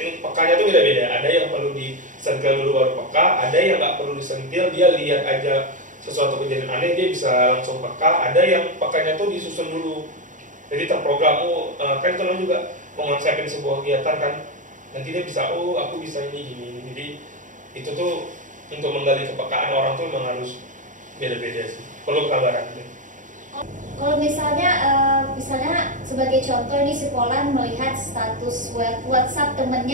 pekanya tuh beda-beda. Ada yang perlu disentil dulu baru peka, ada yang nggak perlu disentil, dia lihat aja sesuatu kejadian aneh dia bisa langsung peka. Ada yang pekanya tuh disusun dulu, jadi terprogram. Kan teman juga mengonsepin sebuah kegiatan kan, nanti dia bisa aku bisa ini gini. Jadi itu tuh untuk menggali kepekaan orang tuh memang harus beda-beda sih, perlu kesabaran. Kalau misalnya sebagai contoh ini si Polan melihat status WhatsApp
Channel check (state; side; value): late; left; 0.37 ms